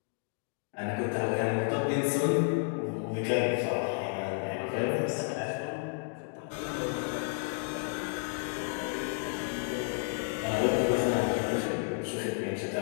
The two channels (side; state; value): right; silent; 57 dB below the other